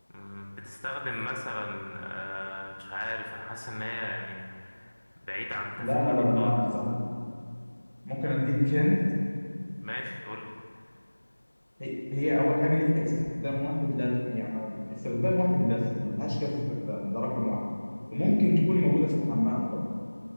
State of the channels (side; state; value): both; inverted; correlation -1.00